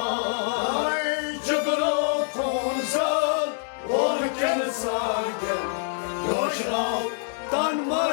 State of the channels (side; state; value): right; silent; digital silence